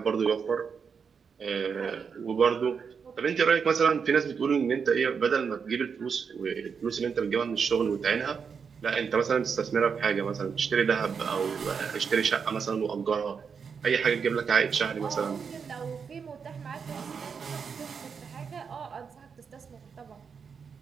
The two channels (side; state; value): left; quieter; 6.2 dB